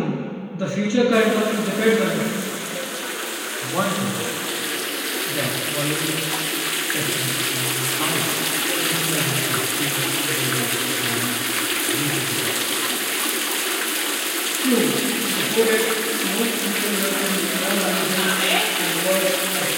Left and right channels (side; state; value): both; identical; correlation 1.00